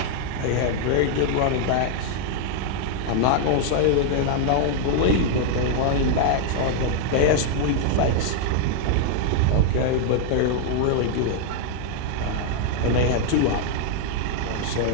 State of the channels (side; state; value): both; different; correlation 0.00